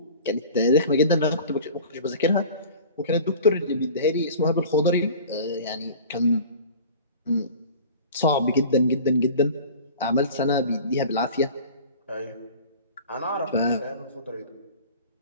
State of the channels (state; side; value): inverted; both; correlation -0.40